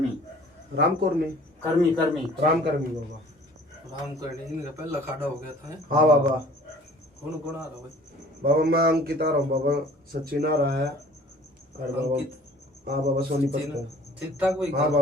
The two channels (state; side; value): normal; both; correlation 0.50